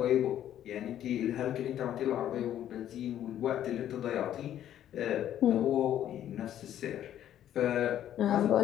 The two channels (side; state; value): right; quieter; 11.2 dB